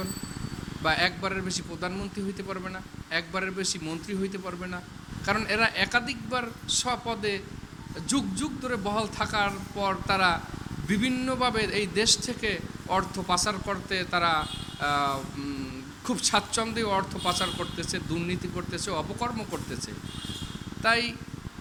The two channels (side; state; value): both; identical; correlation 1.00